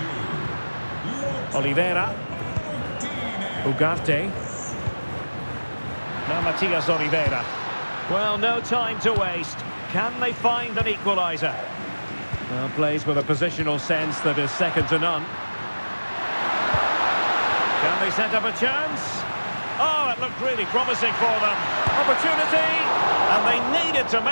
Oliveira. Ugarte. Now Matias Oliveira. Well, no time to waste. Can they find an equaliser? Well, plays with a positional sense that is second to none. Can they set up a chance? Oh, it looked really promising for them. Opportunity! And they needed to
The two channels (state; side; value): inverted; both; correlation -1.00